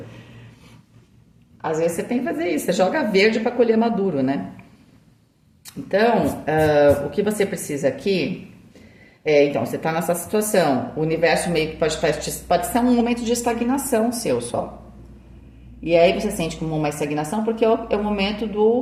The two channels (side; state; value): both; identical; correlation 1.00